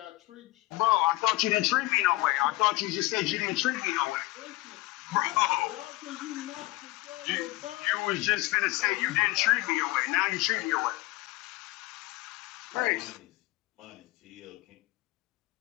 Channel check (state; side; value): quieter; right; 19.9 dB